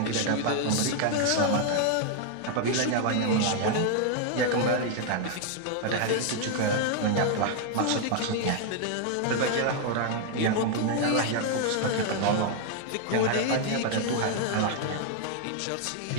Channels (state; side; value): different; both; correlation 0.00